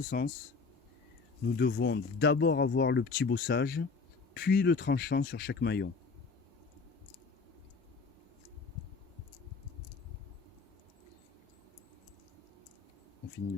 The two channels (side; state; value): right; quieter; 4.6 dB